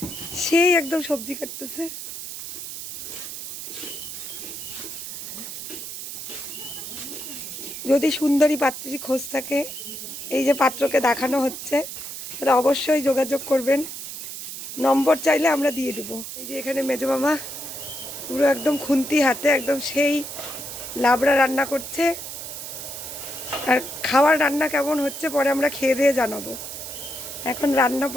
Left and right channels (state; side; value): noise; right; hiss, 9 dB below the sound